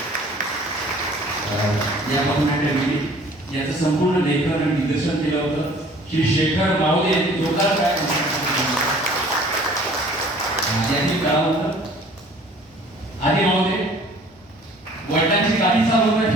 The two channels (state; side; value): normal; both; correlation 0.52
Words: या पथनाट्यामध्ये याचं संपूर्ण लेखन आणि दिग्दर्शन केलं होतं श्री शेखर माऊली यांनी. जोरदार काय यांनी कळालं होतं. आधी महोदय वडिलांची गाडी चालवत